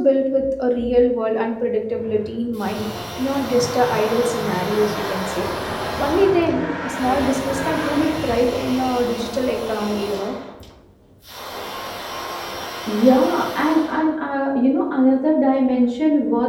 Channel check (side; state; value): both; identical; correlation 1.00